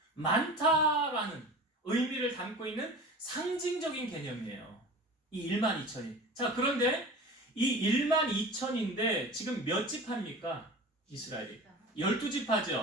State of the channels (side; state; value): both; normal; correlation 0.36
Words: 많다라는 의미를 담고 있는 상징적인 개념이에요. 이 12,000이. 자, 그런데 이 12,000인데 지금 몇 지파입니까? 이스라엘이.